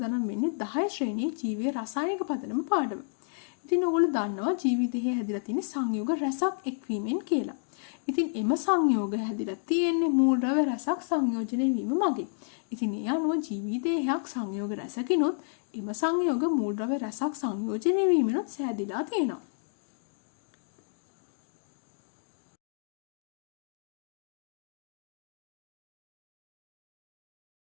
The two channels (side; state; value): right; silent; digital silence